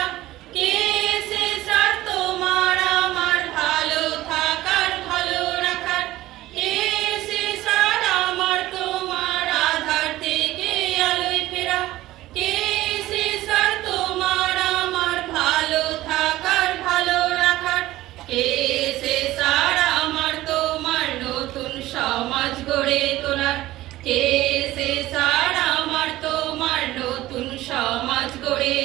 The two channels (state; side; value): quieter; left; 16.3 dB